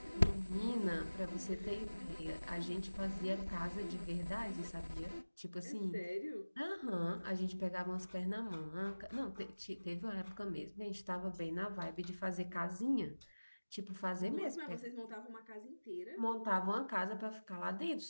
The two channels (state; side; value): inverted; both; correlation -1.00